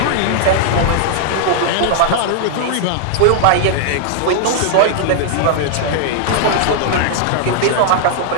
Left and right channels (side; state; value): both; different; correlation -0.01